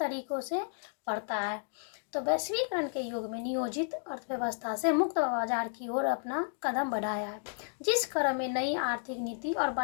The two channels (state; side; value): silent; right; digital silence